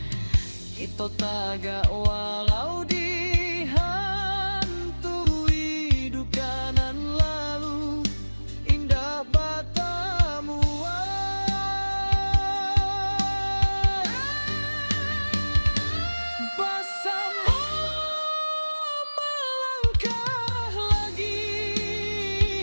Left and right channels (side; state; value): both; inverted; correlation -1.00